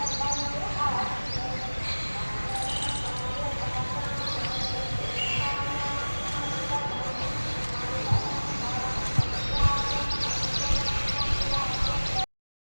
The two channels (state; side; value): inverted; both; correlation -1.00